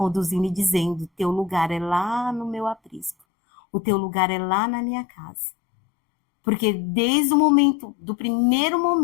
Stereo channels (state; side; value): drops out; right; at 3.2 s